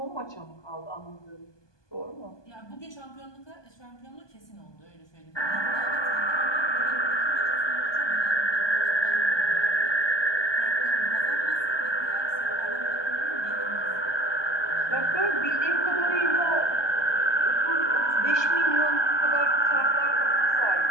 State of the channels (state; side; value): late; right; 1.2 ms